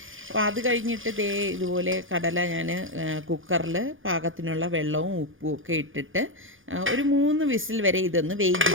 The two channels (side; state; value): left; late; 0.58 ms